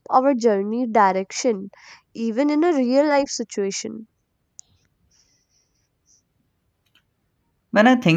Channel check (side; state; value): both; identical; correlation 1.00